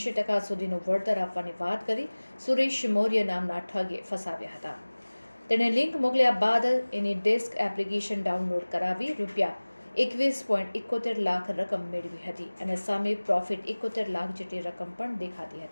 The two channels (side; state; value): both; inverted; correlation -1.00